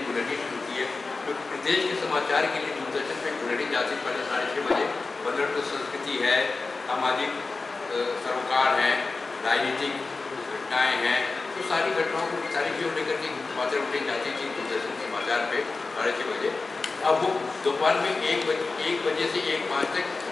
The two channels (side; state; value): right; quieter; 3.9 dB